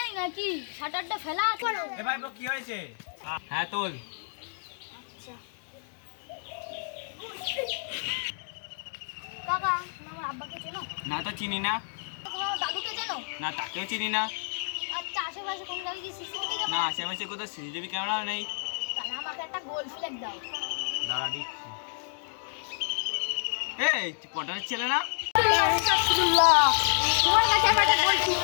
নাকি? শাটারটা ফেলা আছে। এ ভাই কি হয়েছে? হ্যাঁ তোল। আচ্ছা কাকা, আমার আব্বাকে চেনো? না তো চিনি না। তোমার দাদুকে চেনো? না তাকেও চিনি না। আচ্ছা আশেপাশে কোন জায়গায় কি সিসিটিভি না আশেপাশে কোথাও সিসিটিভি ক্যামেরাও নেই। তাহলে আমাকে একটা গোল ফ্ল্যাগ দাও। দাঁড়া দিচ্ছি। এই পটারের ছেলে না? তোমার কাছে আমি একটা গোল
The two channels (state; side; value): silent; right; digital silence